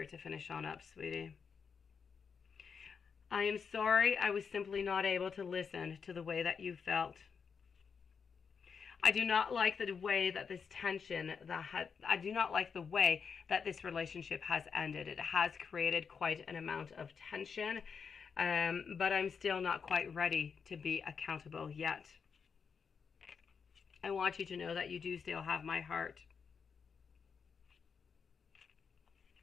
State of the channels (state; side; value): quieter; right; 6.1 dB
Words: to finish on up, sweetie. I am sorry I was simply not able to listen to the way that you felt. I do not like the way that this tension, I do not like the way that this relationship has ended. It has created quite an amount of tension, but I'm still not quite ready to be accountable yet. I want you to know that you do still have my heart.